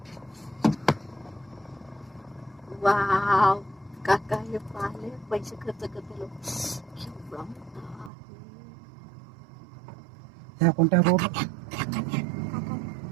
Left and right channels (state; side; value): drops out; left; at 8.1 s